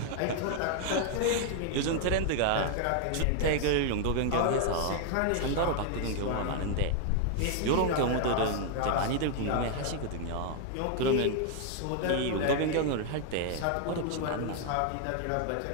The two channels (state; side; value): different; both; correlation 0.00